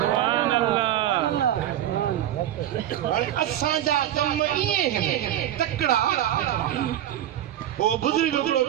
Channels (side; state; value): left; quieter; 11.8 dB